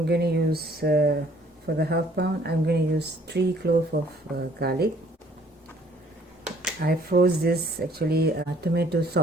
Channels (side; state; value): both; normal; correlation 0.59